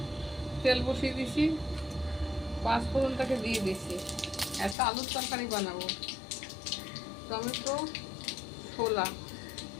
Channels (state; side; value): drops out; right; at 4.8 s